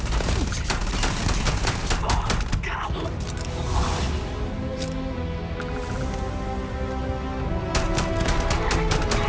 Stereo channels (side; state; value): both; identical; correlation 1.00